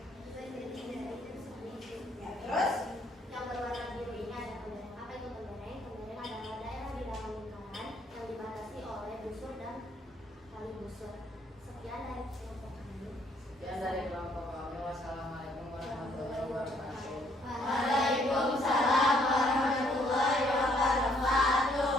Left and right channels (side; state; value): both; normal; correlation 0.67